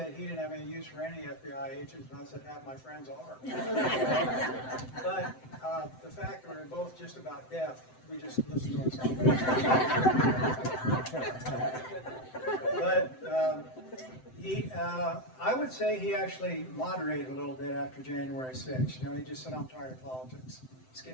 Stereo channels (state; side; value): late; right; 7.8 ms